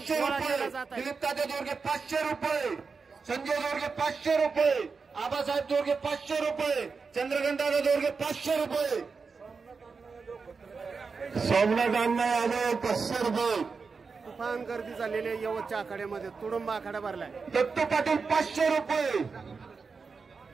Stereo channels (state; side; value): quieter; left; 4.9 dB